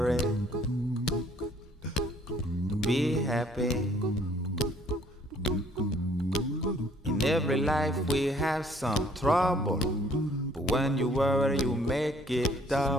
be happy. In every life we have some trouble, but when you worry you make it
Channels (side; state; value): both; normal; correlation 0.61